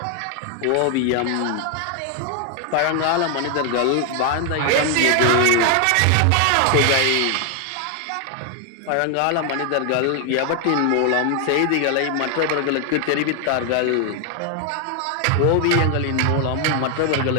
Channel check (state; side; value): different; both; correlation 0.00